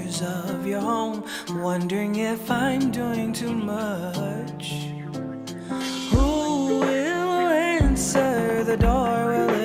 of your home, wondering if I'm doing too much. Who will answer the door? Will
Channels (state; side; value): identical; both; correlation 1.00